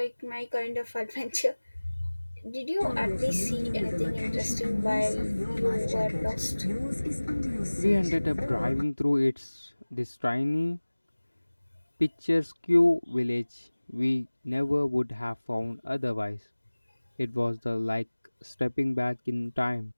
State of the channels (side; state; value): both; inverted; correlation -1.00